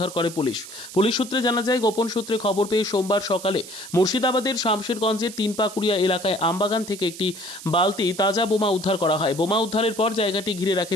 করে পুলিশ। পুলিশ সূত্রে জানা যায়, গোপন সূত্রে খবর পেয়ে সোমবার সকালে মুর্শিদাবাদের শামশেরগঞ্জের তিনপাকুড়িয়া এলাকায় আমবাগান থেকে একটি বালতি তাজা বোমা উদ্ধার করা হয়। বোমা উদ্ধারের পর জায়গাটি ঘিরে রাখে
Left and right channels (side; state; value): right; noise; hiss, 14 dB below the sound